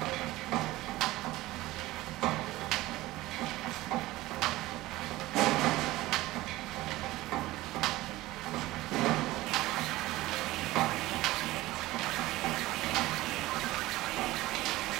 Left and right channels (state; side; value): quieter; left; 17.9 dB